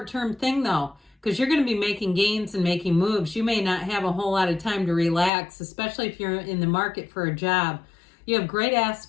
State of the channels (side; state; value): right; drops out; at 5.3 s